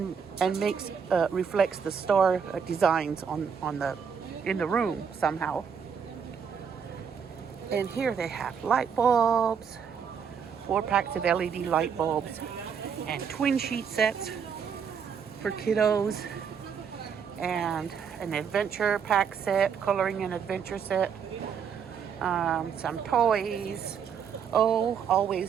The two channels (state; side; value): quieter; left; 7.0 dB